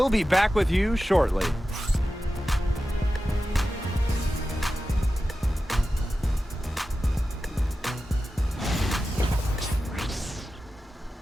be back with you shortly.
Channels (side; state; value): both; normal; correlation 0.93